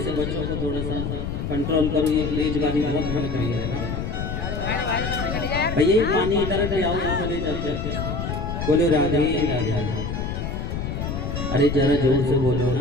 से बच्चों को थोड़ा सा कंट्रोल करो, ये तेजबाजी बहुत भर गई है। भैया ये पानी इधर ले आओ, चले जाते बोलो राधे राधे। अरे जरा जोर से बोलो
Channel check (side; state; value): left; noise; rumble, 3 dB below the sound